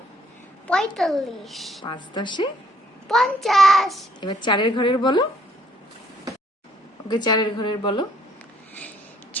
45, 5 10। 50। এবার 4-এর ঘরের বলো। ওকে, 4-এর ঘরের বলো।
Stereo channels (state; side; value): normal; both; correlation 0.64